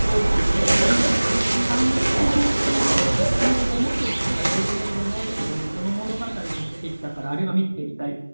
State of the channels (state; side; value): inverted; both; correlation -1.00